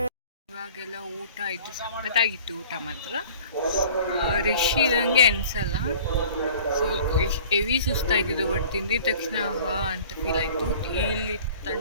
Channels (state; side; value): inverted; both; correlation -0.47